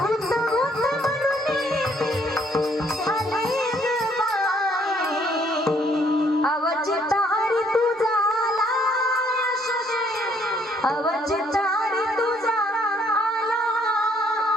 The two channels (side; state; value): both; normal; correlation 0.65